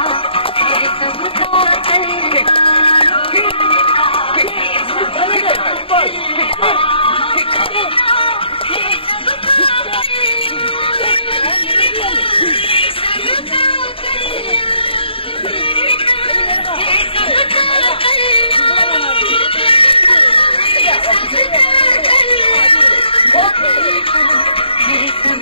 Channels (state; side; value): late; right; 0.27 ms